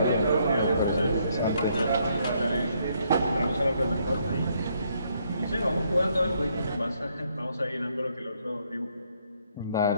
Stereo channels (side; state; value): both; inverted; correlation -0.71